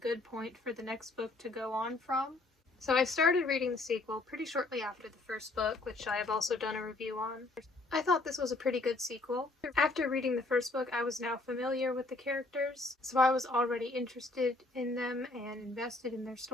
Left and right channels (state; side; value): quieter; right; 3.1 dB